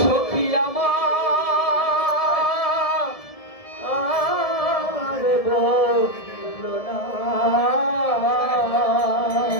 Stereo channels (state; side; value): late; right; 1.7 ms